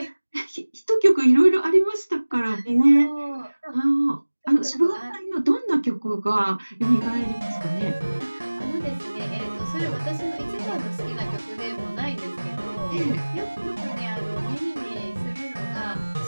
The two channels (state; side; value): inverted; both; correlation -1.00